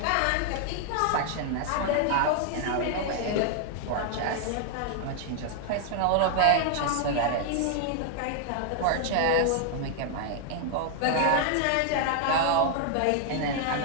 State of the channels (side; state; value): both; different; correlation 0.00